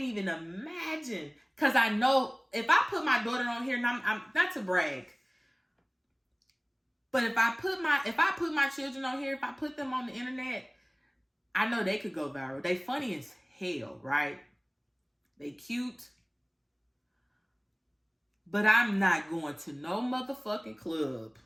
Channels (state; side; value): identical; both; correlation 1.00